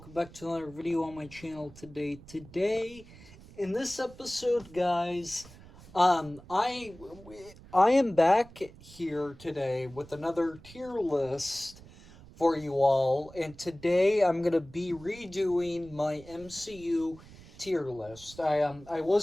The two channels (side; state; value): right; noise; rumble, 20 dB below the sound